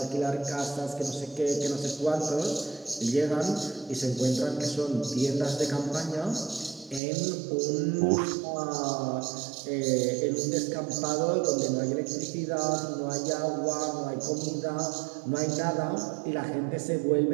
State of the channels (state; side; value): drops out; left; at 7.0 s